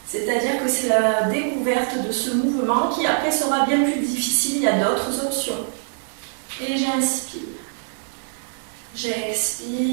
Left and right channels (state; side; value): silent; left; digital silence